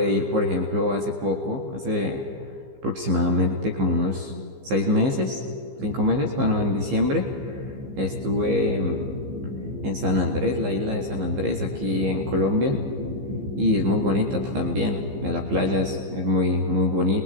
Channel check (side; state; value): left; late; 15 ms